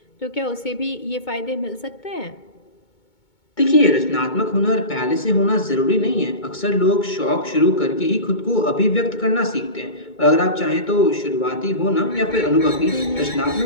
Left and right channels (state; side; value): late; right; 2.2 ms